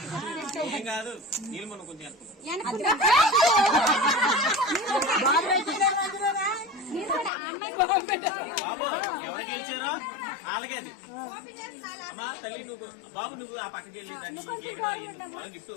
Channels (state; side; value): drops out; right; at 7.3 s